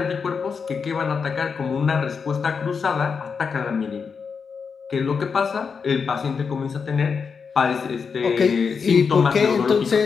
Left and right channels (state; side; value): quieter; right; 5.7 dB